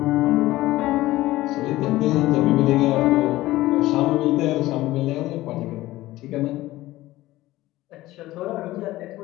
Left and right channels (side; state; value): right; quieter; 17.1 dB